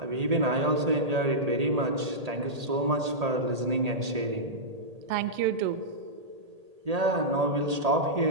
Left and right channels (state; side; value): late; left; 1.8 ms